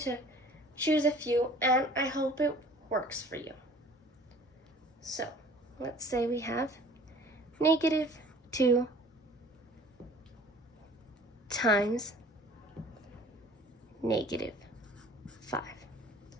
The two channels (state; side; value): normal; both; correlation 0.49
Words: choose a few, and I hope it works for you. So, let's say we have -2 times -5.